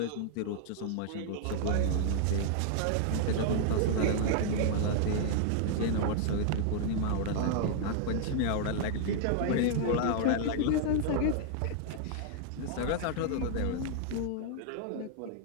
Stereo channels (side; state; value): both; different; correlation 0.00